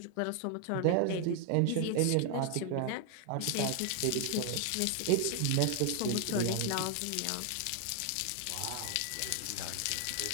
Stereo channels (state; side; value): different; both; correlation 0.00